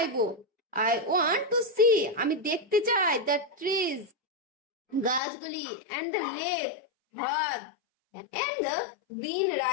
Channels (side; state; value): right; drops out; at 5.2 s